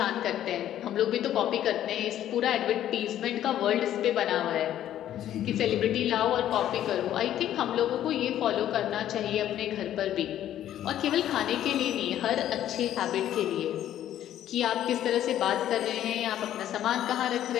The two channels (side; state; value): right; quieter; 11.7 dB